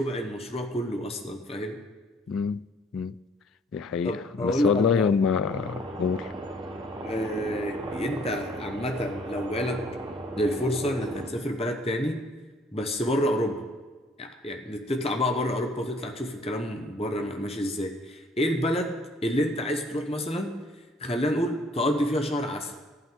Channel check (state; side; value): normal; both; correlation 0.59